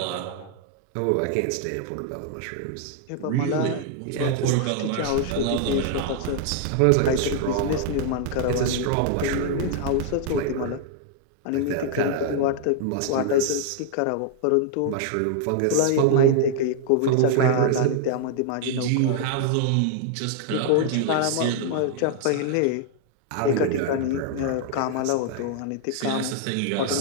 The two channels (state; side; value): different; both; correlation 0.00